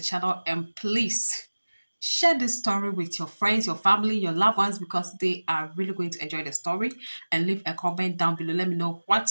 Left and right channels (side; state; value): both; inverted; correlation -1.00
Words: and please share this story with your friends, your family, your loved ones because they are really going to enjoy the story. And leave a comment down below. Let me know